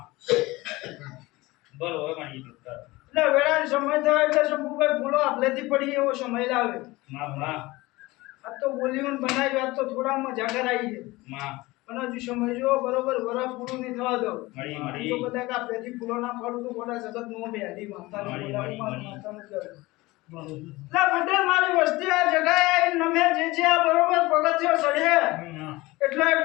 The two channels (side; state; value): right; quieter; 20.7 dB